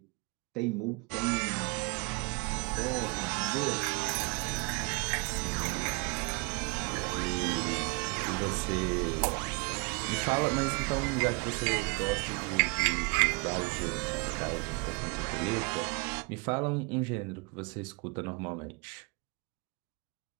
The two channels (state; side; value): quieter; left; 30.3 dB